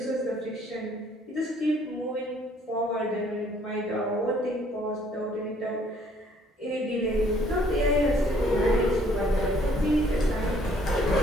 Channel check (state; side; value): normal; both; correlation 0.62